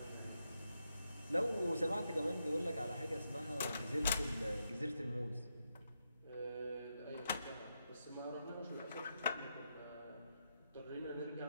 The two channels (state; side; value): inverted; both; correlation -0.84